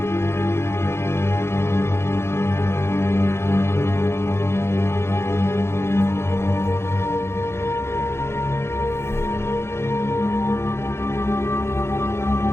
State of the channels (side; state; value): right; late; 0.12 ms